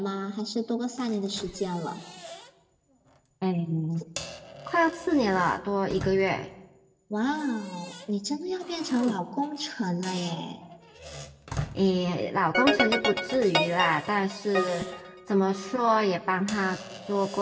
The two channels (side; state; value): both; identical; correlation 1.00